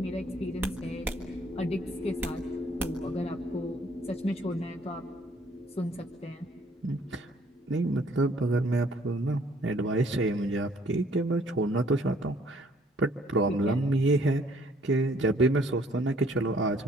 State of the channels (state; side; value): normal; both; correlation 0.61